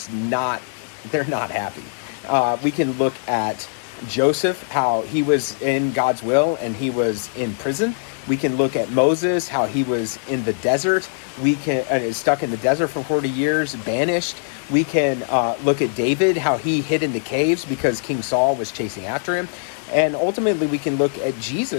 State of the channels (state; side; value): silent; right; 64 dB below the other